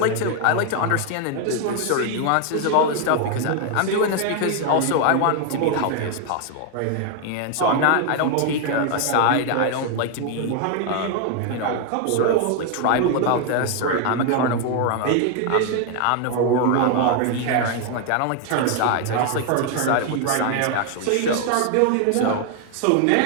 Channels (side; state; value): both; different; correlation 0.00